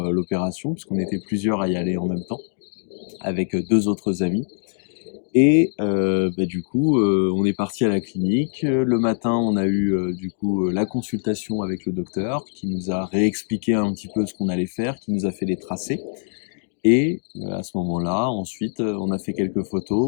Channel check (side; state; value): right; silent; digital silence